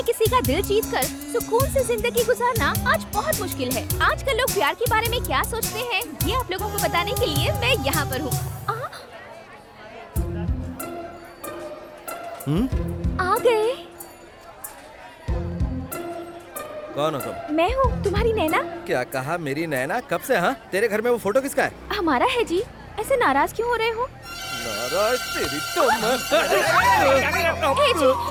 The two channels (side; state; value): both; identical; correlation 1.00